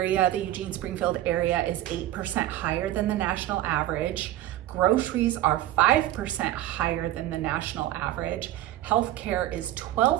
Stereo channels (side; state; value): left; quieter; 14.1 dB